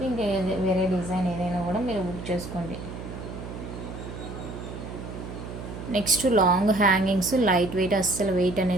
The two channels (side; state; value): right; noise; hum, 10 dB below the sound